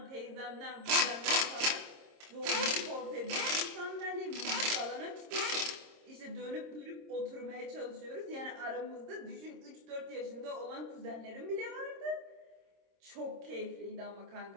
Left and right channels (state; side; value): late; left; 26 ms